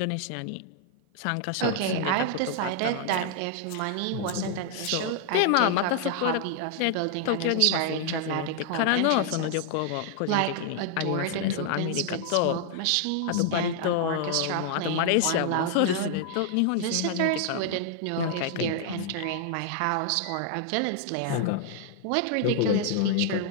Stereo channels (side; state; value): both; different; correlation 0.00